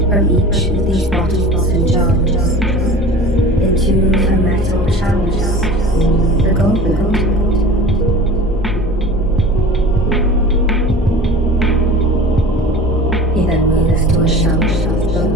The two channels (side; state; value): both; normal; correlation 0.38